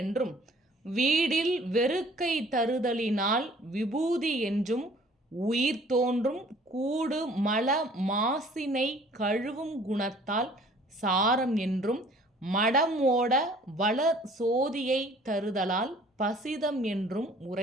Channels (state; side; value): normal; both; correlation 0.54